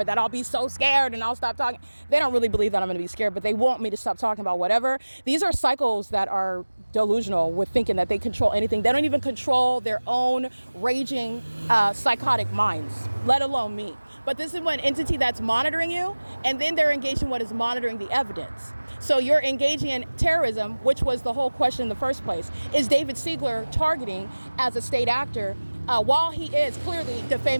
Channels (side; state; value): both; inverted; correlation -1.00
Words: that I'll be so scared and I'll stop talking. They don't really believe that I'm going to be scared, but they want me to stop talking about whatever. These are cycles that are delusional with thinking that they control anything. They don't even control their own raging, psychotic minds, let alone me. But this is one entity that's monitoring you, and then they're engaged in what is monitoring the evidence. So you're engaging in terrorism, which was the whole question in the first place. Is David Siegler targeting as a state actor while he is clearly